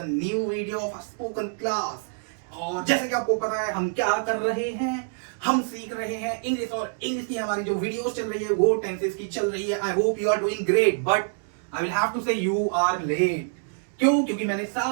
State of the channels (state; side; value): silent; left; digital silence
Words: new video of a spoken class. और जैसे कि आपको पता है हम क्या कर रहे हैं, हम सीख रहे हैं इंग्लिश। और इंग्लिश की हमारी जो वीडियोस चल रही है वो टेंसेस की चल रही है। I hope you are doing great, but I will have to say you are late. क्यों? क्योंकि मैंने